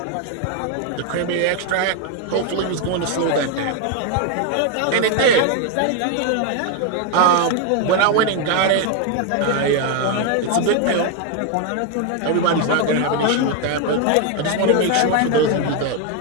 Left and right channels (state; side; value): different; both; correlation 0.01